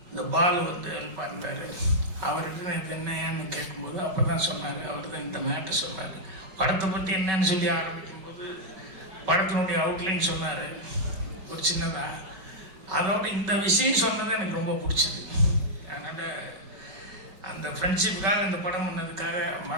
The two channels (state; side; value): late; left; 5.3 ms